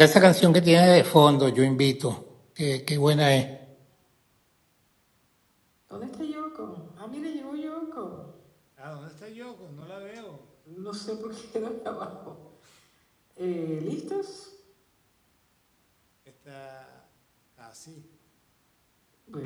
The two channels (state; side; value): identical; both; correlation 1.00